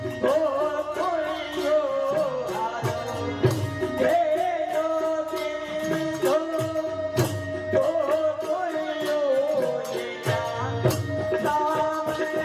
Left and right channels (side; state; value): both; identical; correlation 1.00